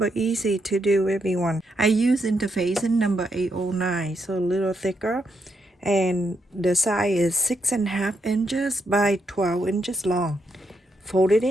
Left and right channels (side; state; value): both; normal; correlation 0.79